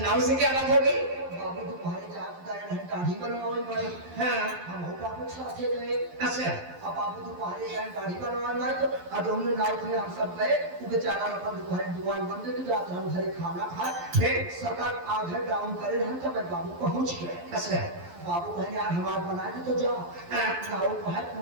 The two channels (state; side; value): late; left; 11 ms